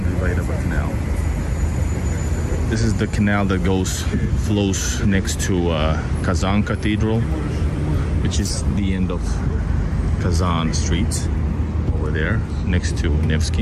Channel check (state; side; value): identical; both; correlation 1.00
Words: debatable canal. This is the canal that flows next to Kazan Cathedral, which is the end of Kazan Street over there, next to